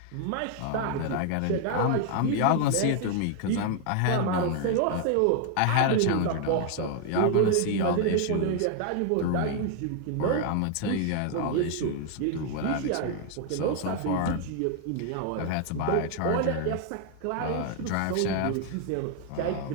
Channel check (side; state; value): both; different; correlation 0.00